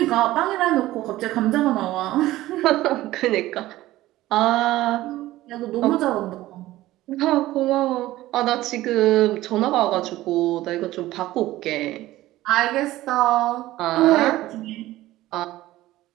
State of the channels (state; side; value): quieter; left; 16.2 dB